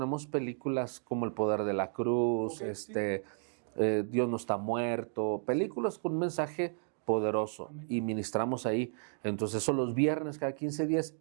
películas como El Poder de la Cruz, Dios no está muerto, películas con un mensaje poderoso. Amén. Y ministramos ahí. Entonces son los viernes cada 15 días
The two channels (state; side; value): silent; left; 56 dB below the other